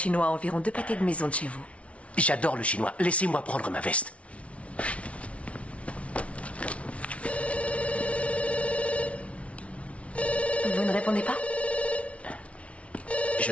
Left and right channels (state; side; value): late; right; 0.063 ms